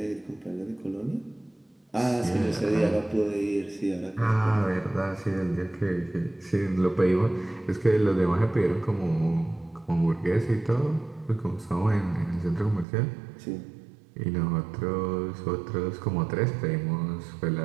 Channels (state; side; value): drops out; left; at 12.9 s